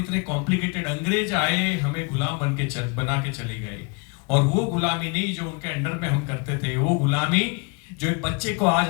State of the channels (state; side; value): quieter; right; 31.6 dB